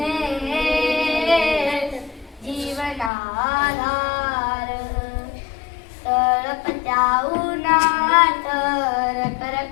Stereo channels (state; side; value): drops out; right; at 3.1 s